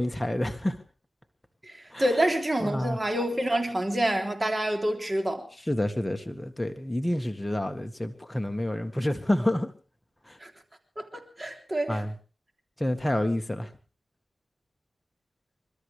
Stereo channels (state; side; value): normal; both; correlation 0.96